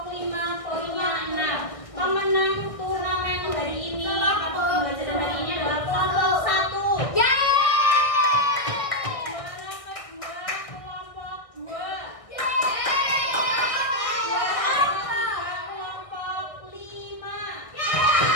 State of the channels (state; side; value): late; right; 1.6 ms